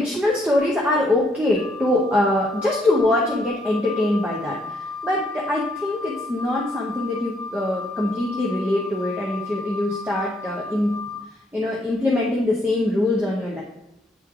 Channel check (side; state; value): both; normal; correlation 0.70